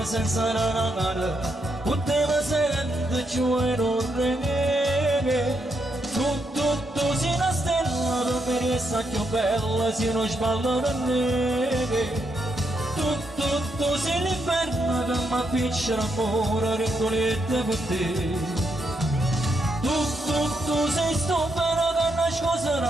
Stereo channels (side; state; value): both; normal; correlation 0.80